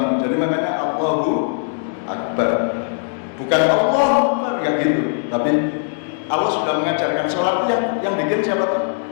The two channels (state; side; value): silent; right; digital silence